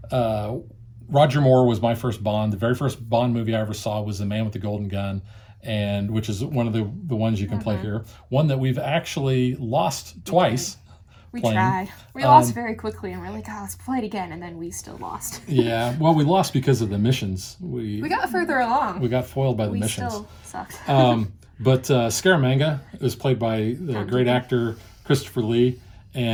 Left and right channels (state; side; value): identical; both; correlation 1.00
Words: Roger Moore was my first Bond. The very first Bond movie I ever saw was The Man with the Golden Gun, and which is one of the ones you can play here. One that we've actually lost twice. We tried. We lost very quickly, and we're like, let's play it again, and then we still lost. Yeah, well, we lost because of the missions. We got further along. We got foiled by the missions. We still sucked. But Scaramanga was played by the great actor Christopher Lee,